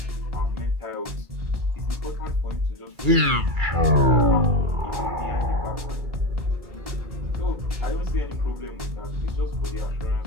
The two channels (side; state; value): left; late; 2.3 ms